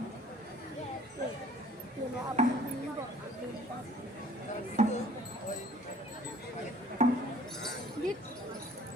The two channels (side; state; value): both; normal; correlation 0.52